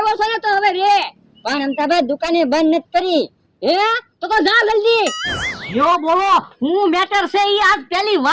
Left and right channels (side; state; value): both; identical; correlation 1.00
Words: છે ને તો હવે રે. પણ અમતાભાઈ દુકાને બંધ નથી કરી. હે તો જા જલ્દી. યો બોલો હું મેટર છે ઈ આજ પહેલી